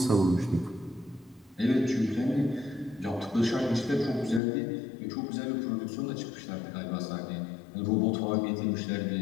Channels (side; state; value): right; drops out; at 4.4 s